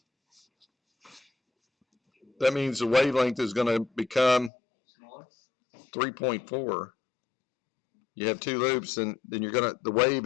That means the wavelength is going to become Smaller? 3.4. You have 2 loops, and then the wave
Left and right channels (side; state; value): right; drops out; at 4.5 s